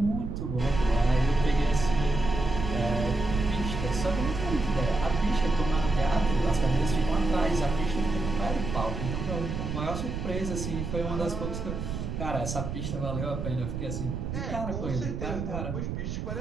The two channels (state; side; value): noise; right; rumble, 4 dB below the sound